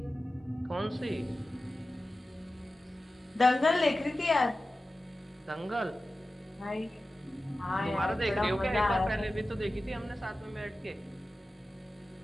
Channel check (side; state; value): both; normal; correlation 0.95